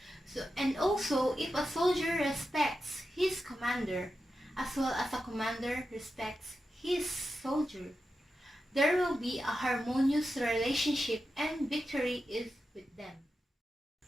And also, if a soldier respects his commander, as well as a commander respects his soldier, there will be a harmonious relationship and victory is with them.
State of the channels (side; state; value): both; normal; correlation 0.90